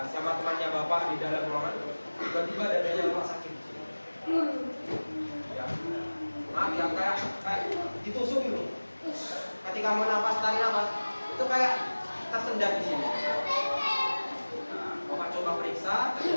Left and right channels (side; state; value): both; inverted; correlation -1.00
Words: sama temannya bapak di dalam ruangan, tiba-tiba dadanya bapak sakit. Ya, maaf ya, kayak ditusuk gitu. Ketika mau nafas, tarik nafas, itu kayak tersendat di sini. Nah, bapak coba periksa,